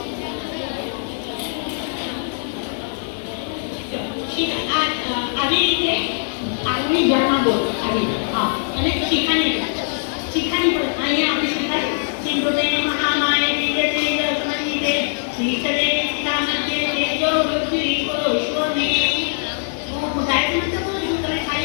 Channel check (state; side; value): silent; right; 56 dB below the other